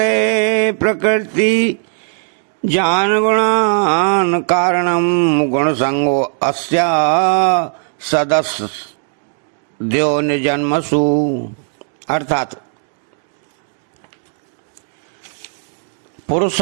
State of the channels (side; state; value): left; silent; digital silence